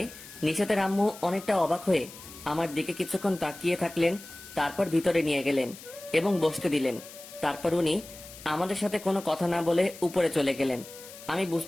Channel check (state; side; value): noise; left; hiss, 16 dB below the sound